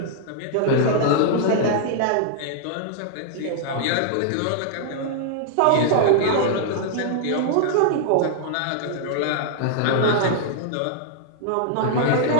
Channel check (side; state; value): both; different; correlation -0.01